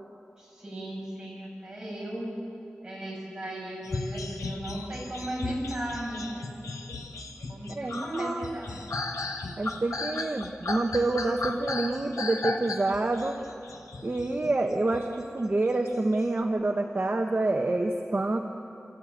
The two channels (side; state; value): both; normal; correlation 0.90